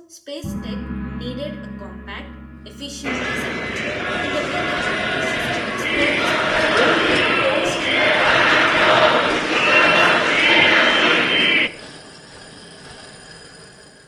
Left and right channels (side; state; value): both; identical; correlation 1.00